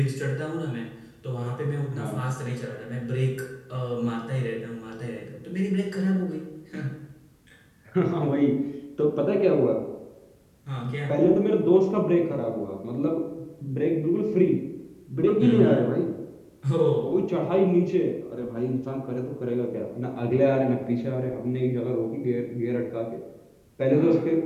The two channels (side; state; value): both; identical; correlation 1.00